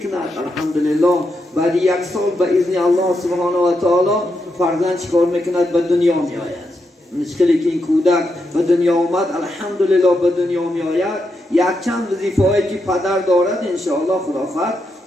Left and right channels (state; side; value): normal; both; correlation 0.84